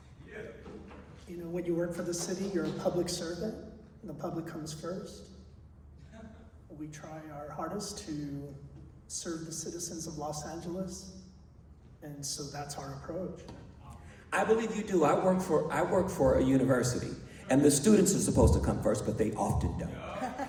When you work for the city, you're a public servant, and the public comes first. We try our hardest to serve the citizens of Los Angeles, and so that's our approach. I believe you do. I work for a university, and the students are supposed to come first, but they often don't.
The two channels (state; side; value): identical; both; correlation 1.00